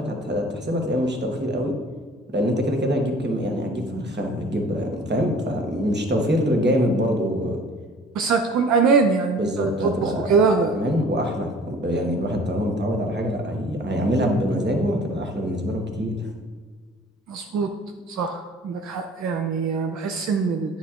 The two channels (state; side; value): normal; both; correlation 0.48